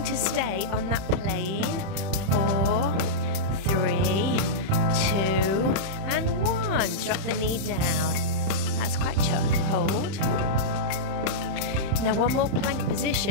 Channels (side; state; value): left; late; 31 ms